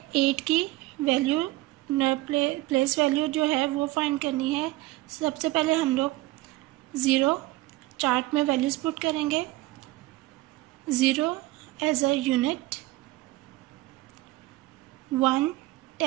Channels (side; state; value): left; quieter; 18.6 dB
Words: 8 की value place value जो है वो find करनी है. सबसे पहले हम लोग 0 चार्ट में वैल्यूज पुट करेंगे. 0 as a unit, 1